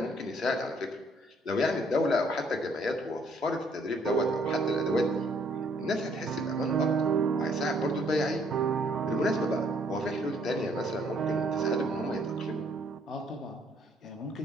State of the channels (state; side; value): normal; both; correlation 0.65